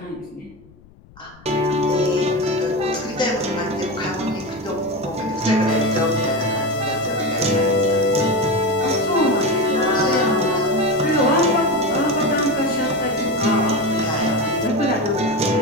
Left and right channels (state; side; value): noise; left; rumble, 26 dB below the sound